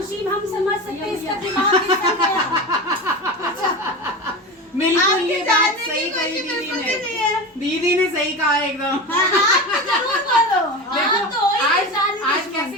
हम समझ सकते हैं। इसका दिमाग कितना गया। बिल्कुल आपकी ये बात जानने सही की कही कोशिश दीदी मुझे नहीं ने। है। दीदी ने सही कहा एकदम। जरूर बोलो। देखो आज कैसे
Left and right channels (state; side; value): normal; both; correlation 0.26